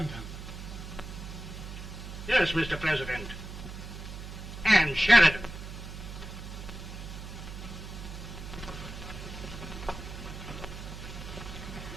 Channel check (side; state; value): right; noise; hum, 10 dB below the sound